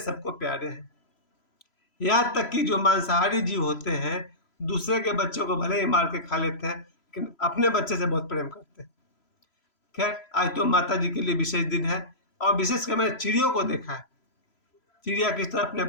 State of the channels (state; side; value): late; right; 3.0 ms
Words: प्यारे हैं। यहाँ तक कि जो मांसाहारी जीव होते हैं, दूसरे के बच्चों को भले ही मार के खा लेते हैं, लेकिन अपने बच्चे से बहुत प्रेम करते हैं। खैर, आज तो माता जी के लिए विशेष दिन है और विशेषकर मैंने चिड़ियों को देखा है। चिड़िया किस तरह अपने